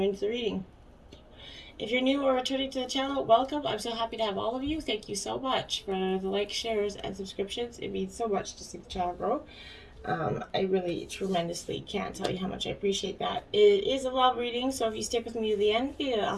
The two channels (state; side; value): identical; both; correlation 1.00